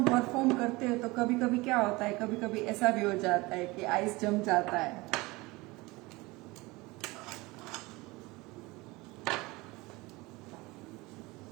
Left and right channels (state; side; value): quieter; left; 22.7 dB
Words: परफॉर्म करते हैं, तो कभी कभी क्या होता है, कभी कभी ऐसा भी हो जाता है कि आइस जम जाता है।